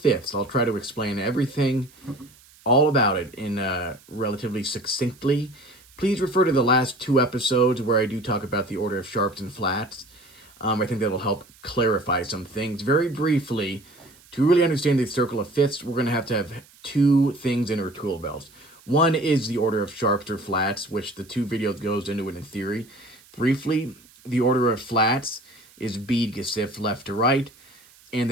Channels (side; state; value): right; noise; hiss, 26 dB below the sound